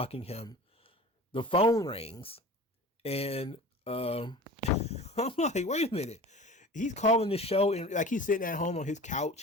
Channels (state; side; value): normal; both; correlation 0.39